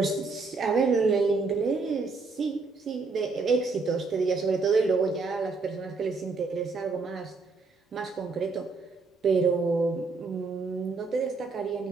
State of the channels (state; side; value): quieter; left; 4.1 dB